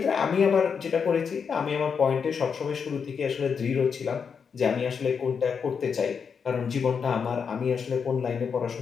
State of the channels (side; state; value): right; quieter; 6.3 dB